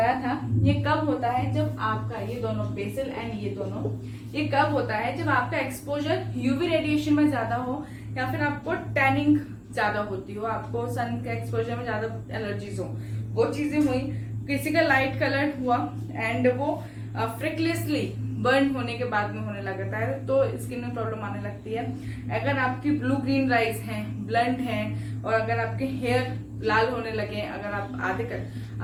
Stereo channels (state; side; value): identical; both; correlation 1.00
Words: था, ये कब होता है जब आपका ये दोनों बेसल एंड ये दोनों, ये कब होता है जब आपका एक्सपोजर यूवी रेडिएशन में ज्यादा हो, या फिर आपको टैनिंग ज्यादा होती हो, आपको सन के एक्सपोजर में ज्यादा एलर्जीज हो, वो चीजें हुई, किसी का लाइट कलर हुआ एंड वो फ्रिकलेसली बर्न होने के बाद में होने लगता है तो स्किन में प्रॉब्लम आने लगती है। अगर आपकी ब्लू ग्रीन राइज हैं, ब्लंट हैं, और अगर आपके हेयर लाल होने लगे, अगर आप